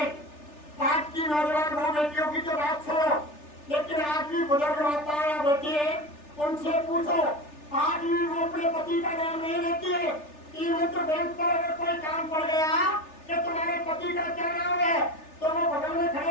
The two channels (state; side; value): late; right; 3.4 ms